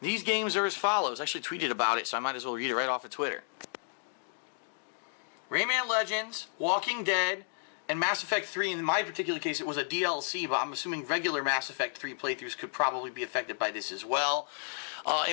games are as follows. I actually tweeted about it, so I might as well read it right off of Twitter. Rayman Legends, Walking Dead, and Mass Effect 3. In my particular case, it was a DLC, but I'm assuming regular Mass Effect 3 playthroughs could probably be affected by this as well.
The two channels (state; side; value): silent; right; digital silence